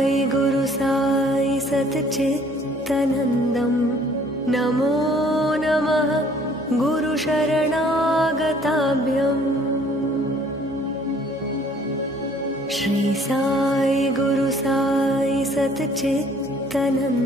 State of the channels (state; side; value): normal; both; correlation 0.58